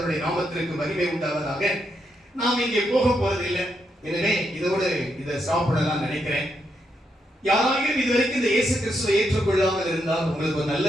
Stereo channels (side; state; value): both; normal; correlation 0.80